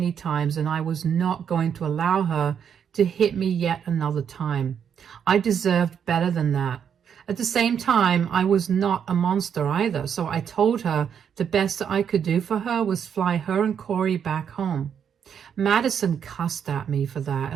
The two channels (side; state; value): left; quieter; 7.9 dB